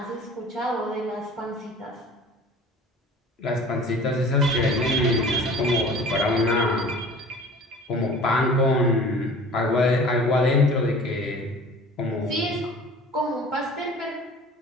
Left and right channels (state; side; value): normal; both; correlation 0.44